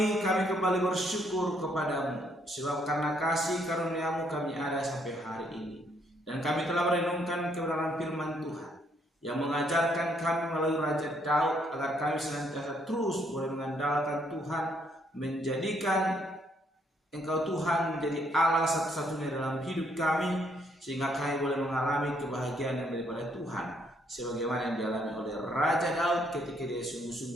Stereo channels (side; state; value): both; normal; correlation 0.70